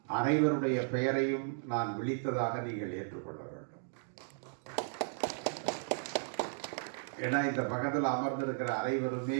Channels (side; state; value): left; silent; digital silence